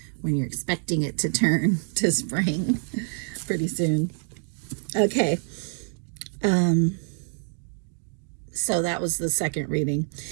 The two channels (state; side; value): silent; left; digital silence